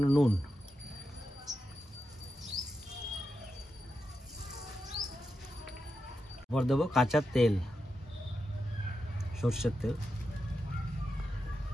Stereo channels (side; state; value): both; normal; correlation 0.88